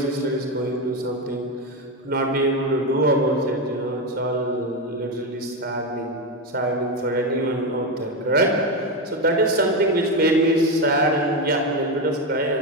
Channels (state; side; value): normal; both; correlation 0.12